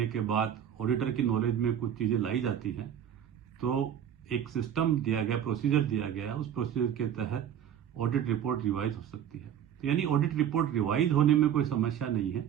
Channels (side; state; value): left; quieter; 9.6 dB